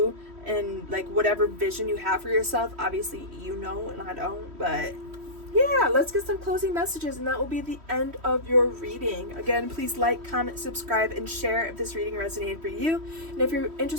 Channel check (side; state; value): left; late; 3.1 ms